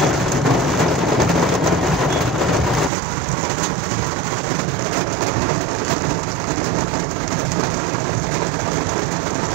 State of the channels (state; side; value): drops out; left; at 2.9 s